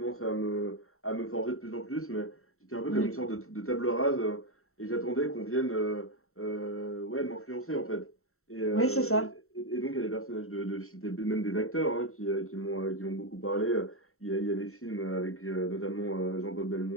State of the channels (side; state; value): right; late; 0.63 ms